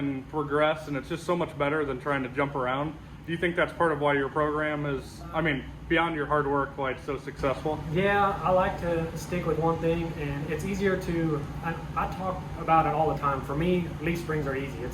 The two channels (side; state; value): both; identical; correlation 1.00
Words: progress, and it's just so much better than trying to jump around. Do you think that's part of why your program is, I mean, beyond your hard work, why it's so successful? Yeah, I like to stick with one thing, and it's easier to, I talk about it all the time. For me, leaf springs are easy.